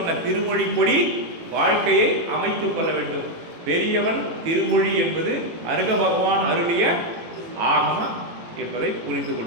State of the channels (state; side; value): late; left; 18 ms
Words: திருமொழிப்படி வாழ்க்கையை அமைத்துக் கொள்ள வேண்டும். பெரியவன் திருமொழி என்பது அருக பகவான் அருளிய ஆகம என்பதை புரிந்து